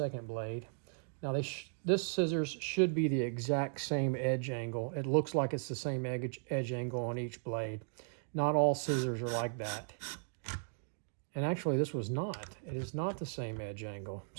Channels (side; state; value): left; silent; digital silence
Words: blade. Now this scissors should be the exact same edge angle. It looks like it's the same edge angle on each blade. Not all scissors are like that. And actually this was not. It is not the same edge angle.